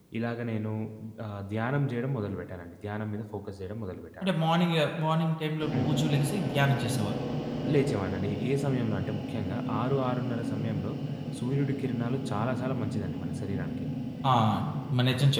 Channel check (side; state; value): both; identical; correlation 1.00